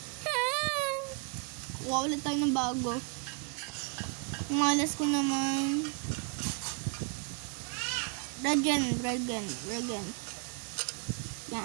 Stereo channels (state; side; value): quieter; left; 36.2 dB